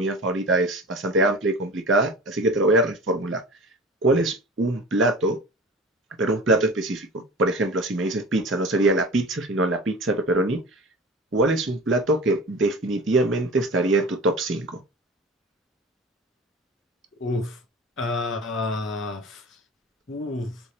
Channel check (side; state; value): both; normal; correlation 0.37